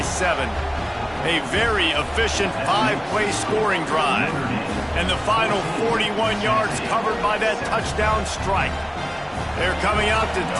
A very efficient 5-play scoring drive. And the final 41 yards covered by that touchdown strike. They're coming out to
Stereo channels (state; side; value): identical; both; correlation 1.00